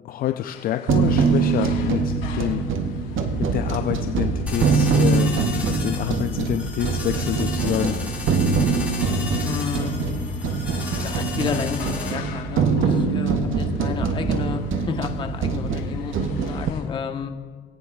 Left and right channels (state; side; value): normal; both; correlation 0.44